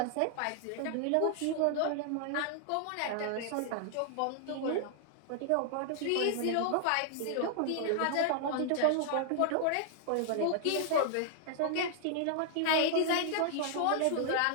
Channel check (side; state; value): both; different; correlation -0.01